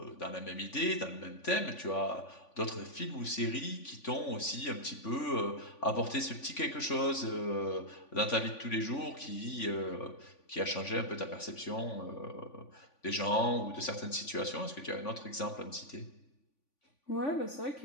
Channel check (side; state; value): right; late; 3.5 ms